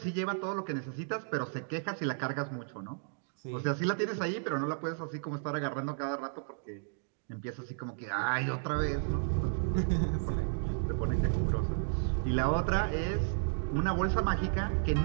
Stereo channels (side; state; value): left; silent; digital silence